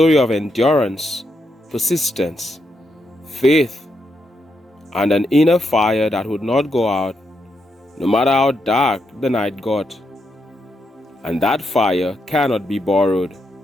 of endurance, persistence, faith, and an inner fire that would not go out no matter how dark the night got. And that fire cannot be borrowed.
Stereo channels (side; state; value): both; normal; correlation 0.81